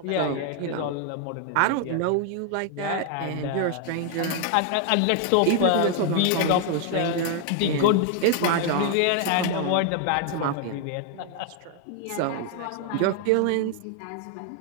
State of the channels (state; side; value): different; both; correlation 0.00